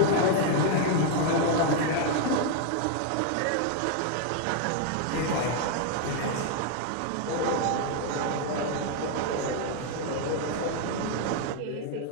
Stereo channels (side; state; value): both; different; correlation 0.00